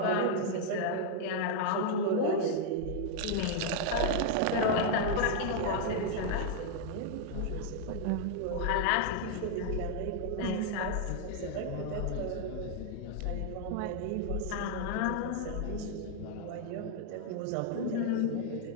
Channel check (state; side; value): different; both; correlation 0.00